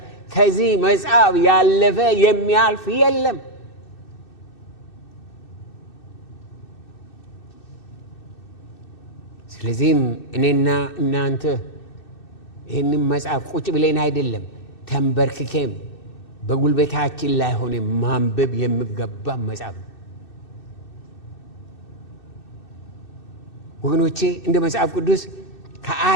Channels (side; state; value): right; late; 2.6 ms